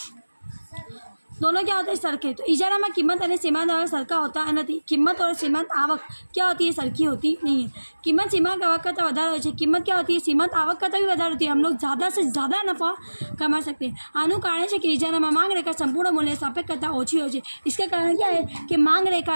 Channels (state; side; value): inverted; both; correlation -1.00